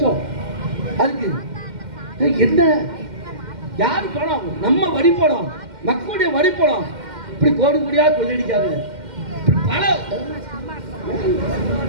அதுக்கு என்ன யாரு பணம்? நம்ம வரி பணம், மக்களுடைய வரி பணம். இப்படி கோடி கோடியா கொள்ளையடிக்காது. பல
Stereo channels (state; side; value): late; left; 2.1 ms